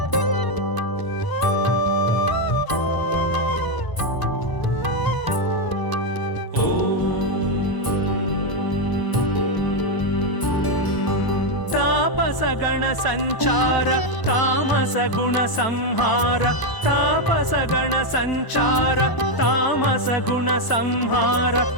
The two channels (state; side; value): late; right; 1.0 ms